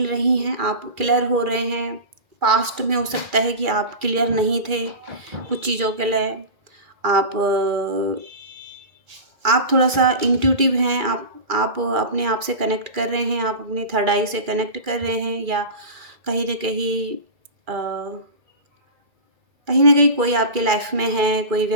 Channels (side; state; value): left; late; 2.4 ms